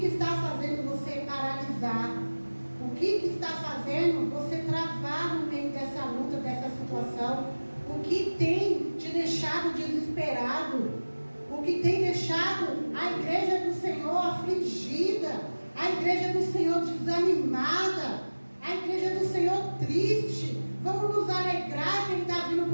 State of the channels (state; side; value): inverted; both; correlation -1.00